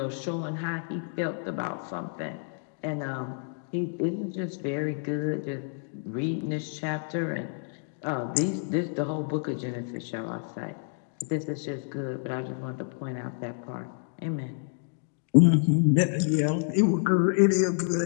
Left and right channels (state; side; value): silent; right; 59 dB below the other